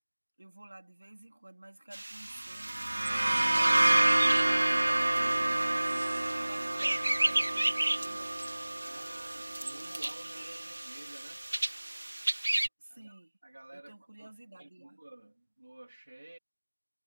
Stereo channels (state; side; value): inverted; both; correlation -1.00